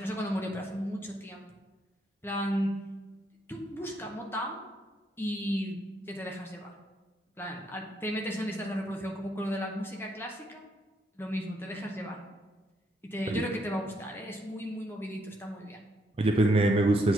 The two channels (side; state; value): both; normal; correlation 0.74